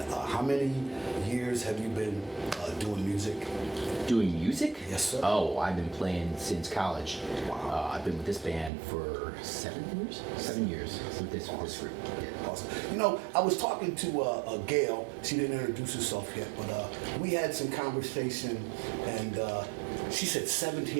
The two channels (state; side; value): drops out; left; at 8.7 s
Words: how many years have you been doing music? Doing music? Yes, sir. Oh, I've been playing since college. Wow. I've been with this band for 7 years? 7 years with this group. Yeah. Awesome. You know, I was talking to Gail. She didn't introduce herself yet, but we had some conversation, and she said